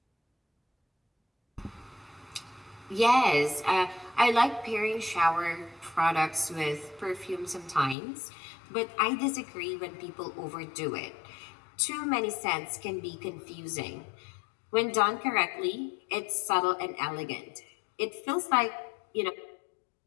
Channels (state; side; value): drops out; right; at 8.0 s